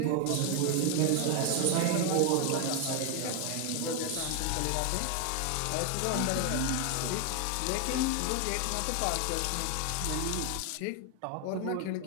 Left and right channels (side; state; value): both; different; correlation 0.01